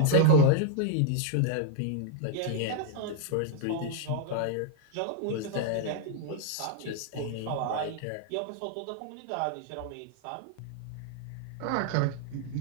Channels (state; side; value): different; both; correlation 0.00